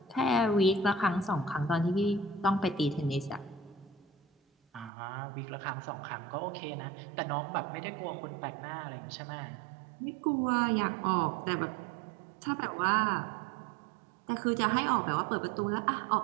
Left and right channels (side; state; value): left; drops out; at 4.9 s